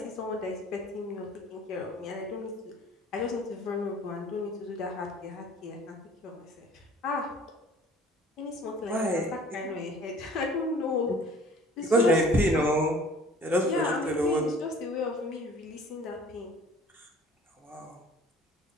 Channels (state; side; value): normal; both; correlation 0.50